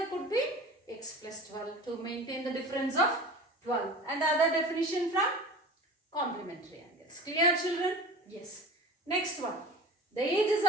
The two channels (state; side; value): normal; both; correlation 0.36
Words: could be x plus 12 to maintain the difference of 12. And the other definition from complementary angles. Clear, children? Yes. Next one. The ages